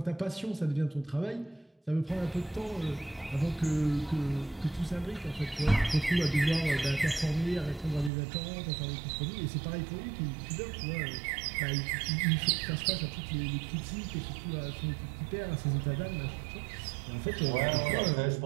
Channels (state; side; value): drops out; left; at 8.1 s